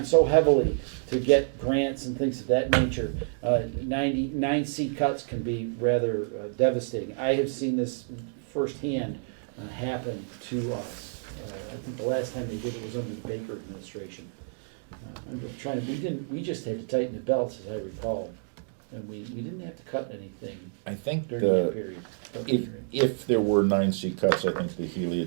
so heavily to get grants and things of that nature. 9C cuts can be rather devastating. I have seen this firsthand happen to us. I think the last time they did it was under the Baker administration. I'm just trying to, we just had to tighten the belts, as I recall. and we didn't have to cut anything I think during that the, period. if there were 9C cuts, I think the Healy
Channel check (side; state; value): left; silent; digital silence